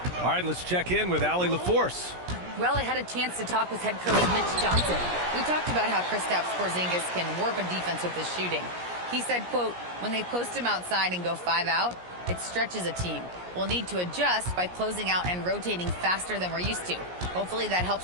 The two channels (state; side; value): late; left; 17 ms